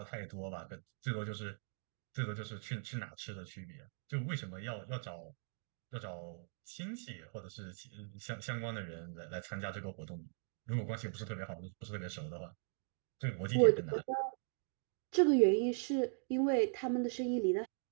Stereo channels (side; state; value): left; silent; 51 dB below the other